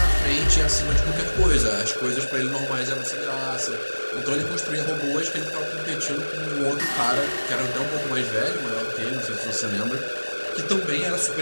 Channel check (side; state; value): both; inverted; correlation -1.00